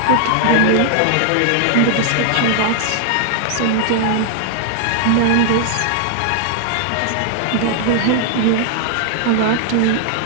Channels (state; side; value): different; both; correlation 0.00